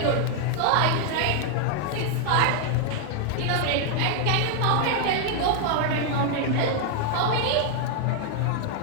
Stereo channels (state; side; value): different; both; correlation 0.00